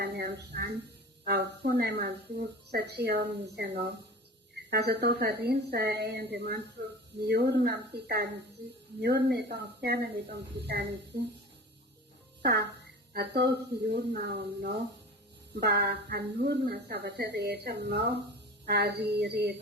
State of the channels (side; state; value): both; normal; correlation 0.36